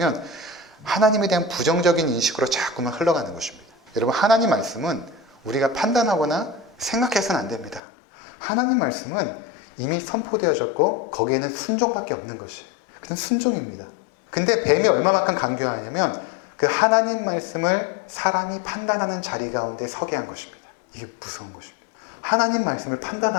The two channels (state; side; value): drops out; right; at 7.8 s